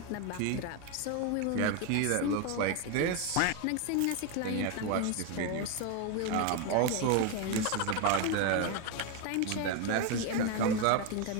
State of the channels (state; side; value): different; both; correlation 0.02